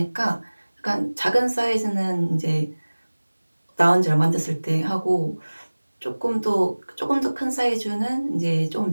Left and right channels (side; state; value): both; inverted; correlation -1.00